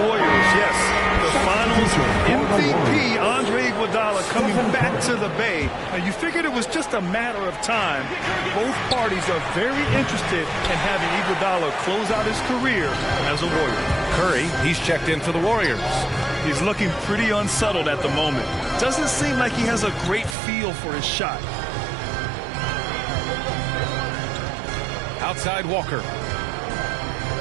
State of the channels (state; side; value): drops out; left; at 20.4 s